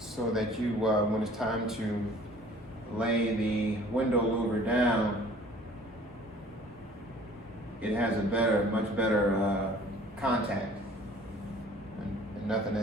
that you when it's time to lay the window louver down, it has a much better contact. Nothing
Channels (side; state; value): both; normal; correlation 0.51